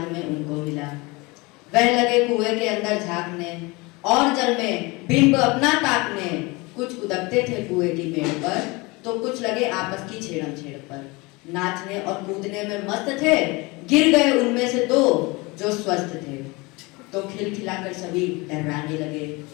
में उनको मिला। वह लगे कुएं के अंदर झांकने और जल में बिंब अपना ताकने। कुछ उदकते थे कुएं की मेड़ पर तो कुछ लगे आपस की छेड़म छेड़ पर। नाचने और कूदने में मस्त थे, गिर गए उनमें से दो जो स्वस्थ थे। तो खिलखिलाकर सभी डराने लगे,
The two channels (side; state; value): right; quieter; 24.9 dB